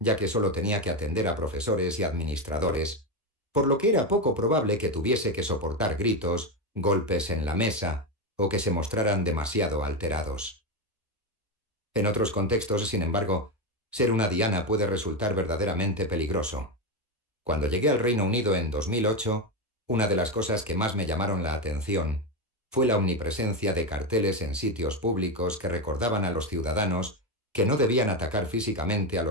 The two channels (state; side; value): normal; both; correlation 0.12